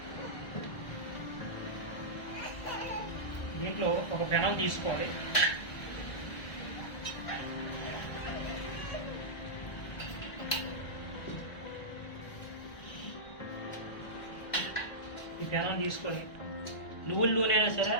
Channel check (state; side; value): late; right; 1.6 ms